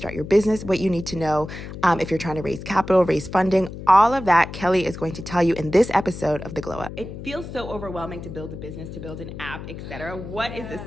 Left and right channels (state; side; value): noise; left; hum, 11 dB below the sound